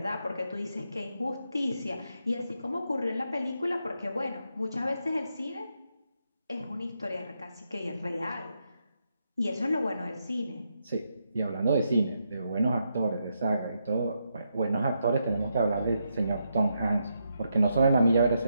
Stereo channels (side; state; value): both; inverted; correlation -0.82